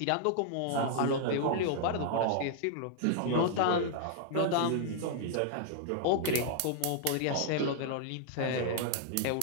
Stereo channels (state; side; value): different; both; correlation -0.01